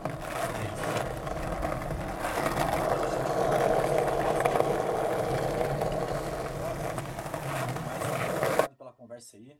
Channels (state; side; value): identical; both; correlation 1.00